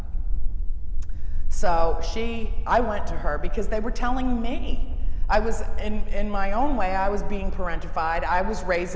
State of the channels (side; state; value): both; identical; correlation 1.00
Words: So I went to her because they were telling me. I was, in my own way, I was being parentified. I was